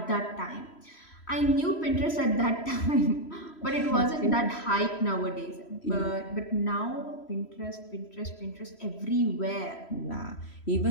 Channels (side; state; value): right; late; 3.1 ms